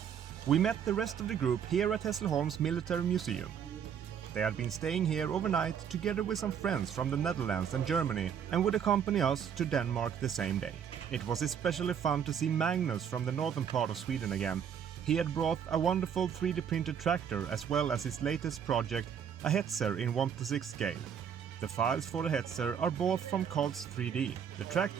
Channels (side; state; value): left; quieter; 8.1 dB